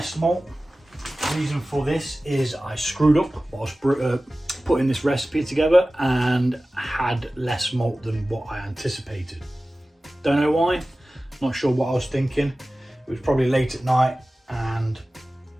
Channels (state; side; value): normal; both; correlation 0.96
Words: malt. The reason for this is I screwed up whilst putting this recipe together and had less malt than what I anticipated. Don't know why, not sure what I was thinking. It was probably late at night and